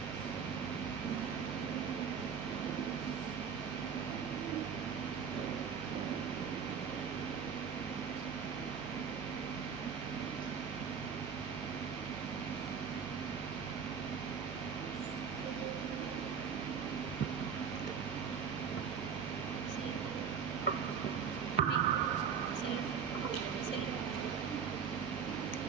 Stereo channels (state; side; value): quieter; left; 6.7 dB